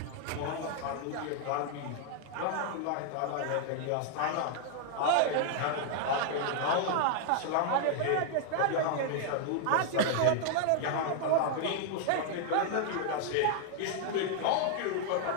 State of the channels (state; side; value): different; both; correlation 0.00